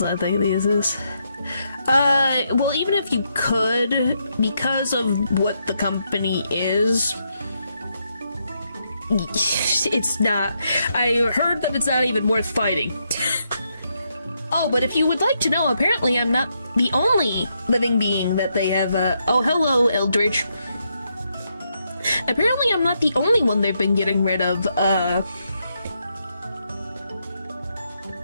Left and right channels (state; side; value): inverted; both; correlation -0.79